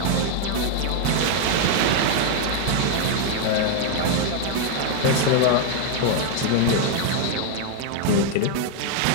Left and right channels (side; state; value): both; different; correlation 0.00